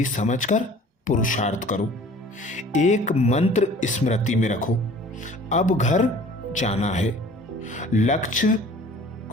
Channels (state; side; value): normal; both; correlation 0.48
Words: समझकर पुरुषार्थ करो। एक मंत्र स्मृति में रखो, अब घर जाना है। लक्ष्य